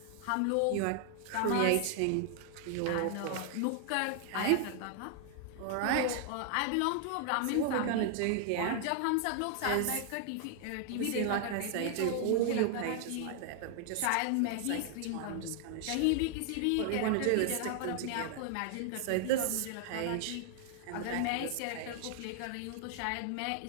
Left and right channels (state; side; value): different; both; correlation 0.00